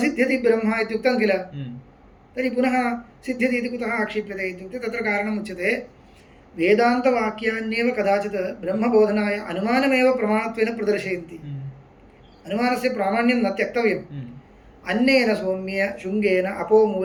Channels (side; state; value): both; identical; correlation 1.00